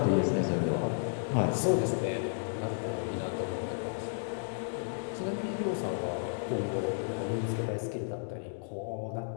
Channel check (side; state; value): right; silent; digital silence